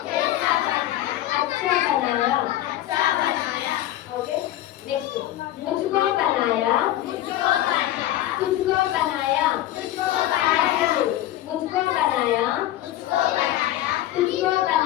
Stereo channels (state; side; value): quieter; right; 13.9 dB